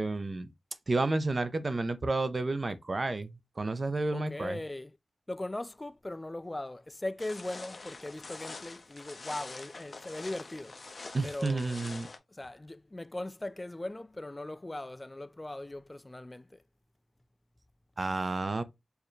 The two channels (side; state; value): both; normal; correlation 0.95